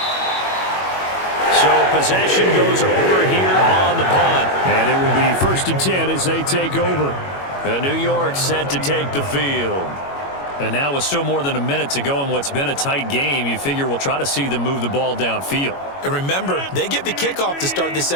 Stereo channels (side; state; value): right; late; 21 ms